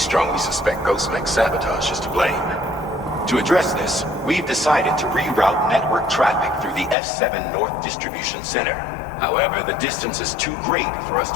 suspect Ghostmech sabotage is to blame. To address this, we've decided to reroute network traffic through the F7 North Distribution Center. However, the distance is too great for us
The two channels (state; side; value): drops out; right; at 7.0 s